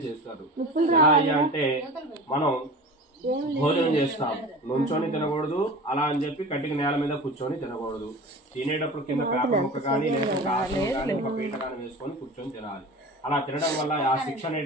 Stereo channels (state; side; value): normal; both; correlation 0.35